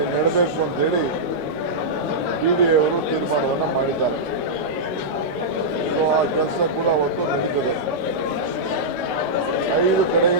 ನೆಡಬೇಕು ಅಂತೇಳಿ BDA ಅವರು ತೀರ್ಮಾನವನ್ನು ಮಾಡಿದ್ದಾರೆ. ಸೊ ಆ ಕೆಲಸ ಕೂಡ ಅವತ್ತು ನಡೀತದೆ. 5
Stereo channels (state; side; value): normal; both; correlation -0.10